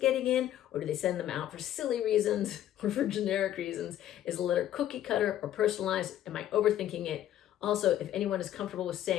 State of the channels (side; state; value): right; quieter; 12.0 dB